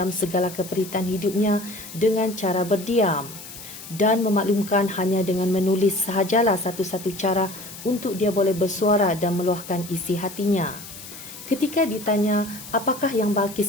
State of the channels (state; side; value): noise; left; hiss, 14 dB below the sound